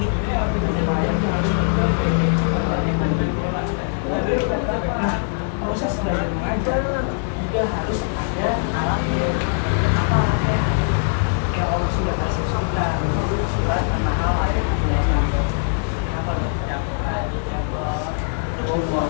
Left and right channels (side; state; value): right; silent; digital silence